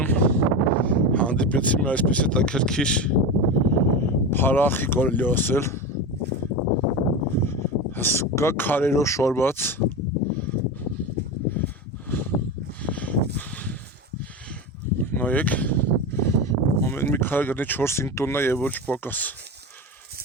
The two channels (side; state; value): both; normal; correlation 0.22